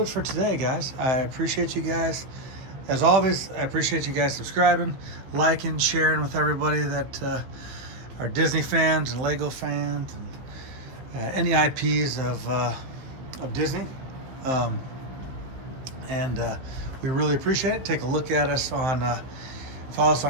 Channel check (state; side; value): late; left; 15 ms